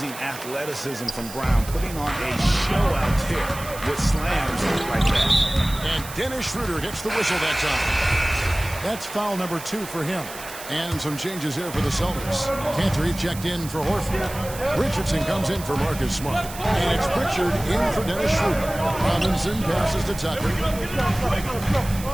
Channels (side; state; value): right; noise; hiss, 13 dB below the sound